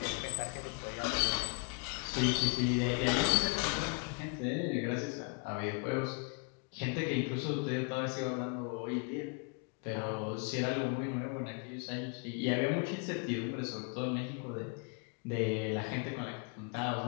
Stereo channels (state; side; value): quieter; right; 34.2 dB